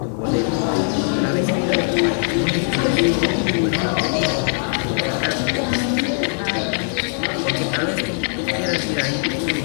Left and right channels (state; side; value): silent; right; 63 dB below the other